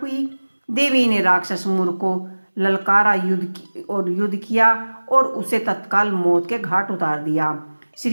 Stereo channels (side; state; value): both; inverted; correlation -1.00